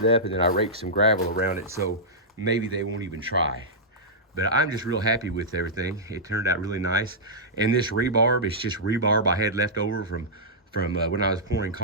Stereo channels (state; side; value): normal; both; correlation -0.11